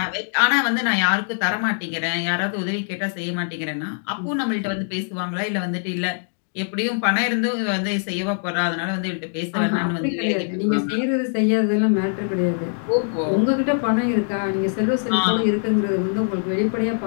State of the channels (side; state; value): right; silent; 64 dB below the other